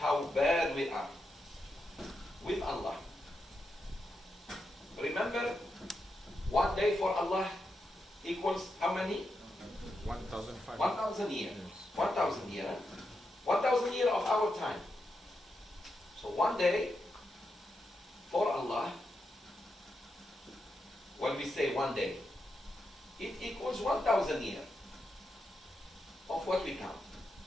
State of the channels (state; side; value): normal; both; correlation 0.85